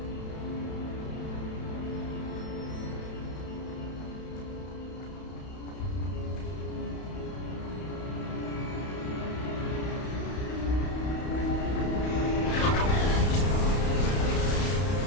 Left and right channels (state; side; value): late; right; 32 ms